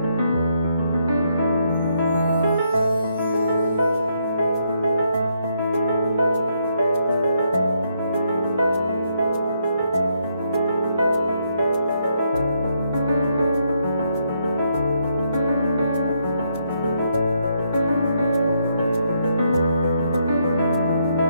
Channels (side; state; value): both; inverted; correlation -0.76